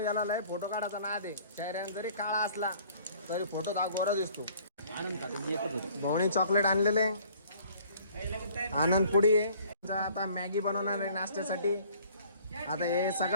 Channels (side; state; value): both; inverted; correlation -0.55